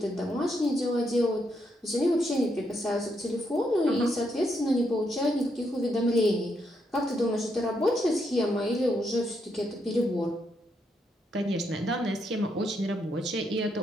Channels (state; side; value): normal; both; correlation 0.78